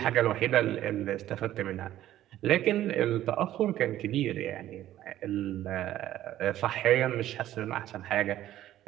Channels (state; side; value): quieter; left; 13.2 dB